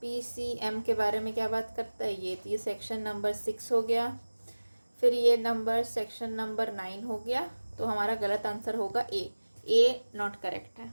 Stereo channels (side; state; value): both; inverted; correlation -1.00